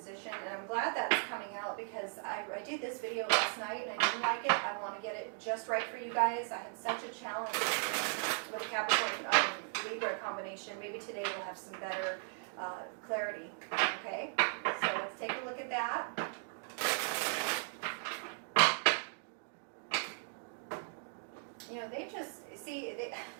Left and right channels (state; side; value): silent; left; 53 dB below the other